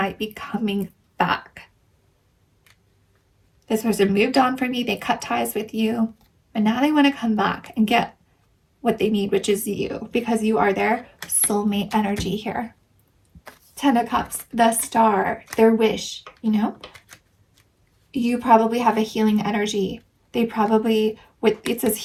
be coming back. This person moved on from you. They cut ties with you. But now they want to come back and get what they need, which is you, because you are their soulmate energy here. 10 of Cups, the Star, their wish, you know? You probably have a healing energy. They probably, it says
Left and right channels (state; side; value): identical; both; correlation 1.00